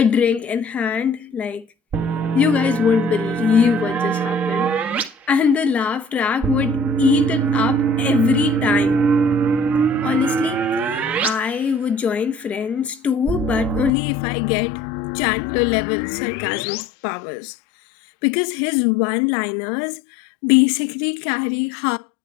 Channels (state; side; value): drops out; right; at 13.9 s